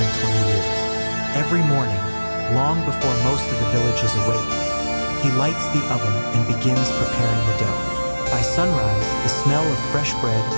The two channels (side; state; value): both; inverted; correlation -1.00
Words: 20 years. Every morning, long before most of the village is awake, he lights the oven and begins preparing the dough. By sunrise, the smell of fresh bread